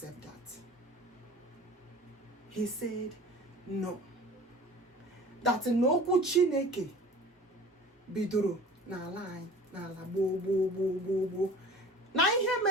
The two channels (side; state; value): both; normal; correlation 0.43